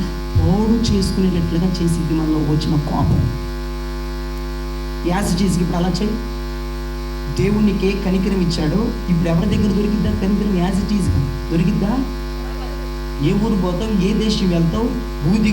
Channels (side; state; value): both; identical; correlation 1.00